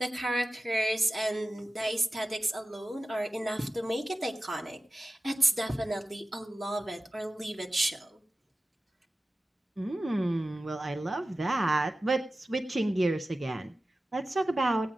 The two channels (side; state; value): both; normal; correlation 0.95